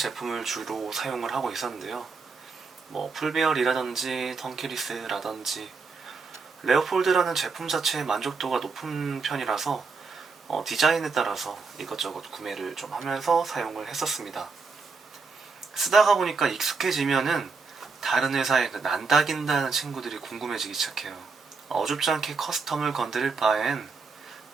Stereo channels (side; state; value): left; quieter; 4.6 dB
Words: 주로 사용을 하고 있었는데요. 풀베어리라든지 턴키리스라든지 레오폴드라는 제품 자체의 만족도가 높은 편이라서 디자인에 따라서 이것저것 구매를 좀 하면서 사용을 했었습니다. 쓰다가 보니까 익숙해지면은 다른 회사의 그 난다긴다는 친구들이 궁금해지기 시작해요. 어줍지 않게 커스텀을 건드릴 바엔